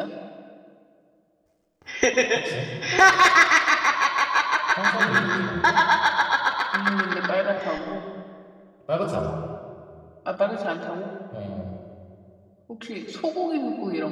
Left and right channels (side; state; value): both; identical; correlation 1.00